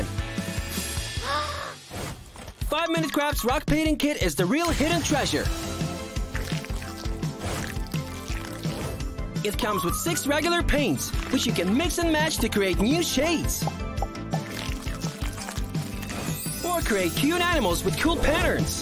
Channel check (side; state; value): both; identical; correlation 1.00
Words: 5-Minute Crafts rock painting kit is the real hidden treasure. It comes with 6 regular paints, which you can mix and match to create new shades. Or create cute animals with cool